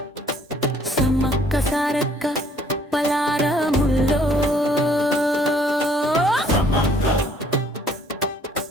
సమ్మక్క సారక్క పలారముల్లో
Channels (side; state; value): both; normal; correlation 0.61